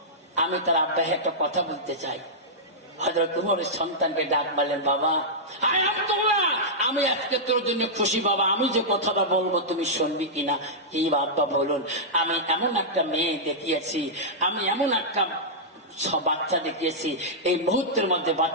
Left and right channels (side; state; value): both; normal; correlation -0.11